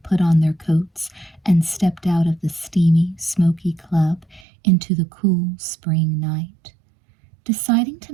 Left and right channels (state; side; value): drops out; left; at 4.5 s